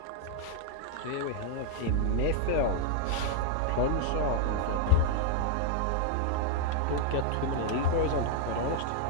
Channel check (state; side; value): different; both; correlation 0.00